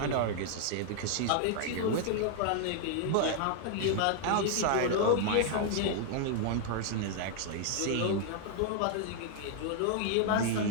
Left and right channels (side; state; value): both; different; correlation 0.00